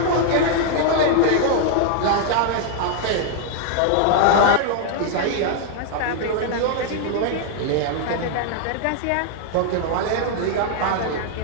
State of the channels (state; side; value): different; both; correlation -0.01